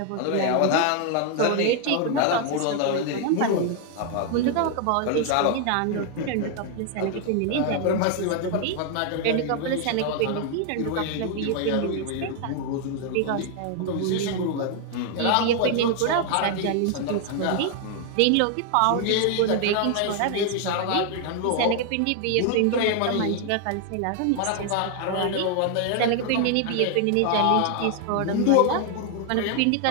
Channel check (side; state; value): both; different; correlation 0.00